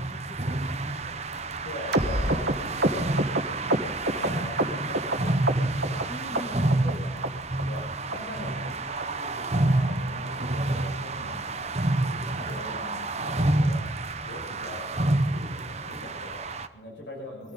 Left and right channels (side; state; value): both; normal; correlation 0.54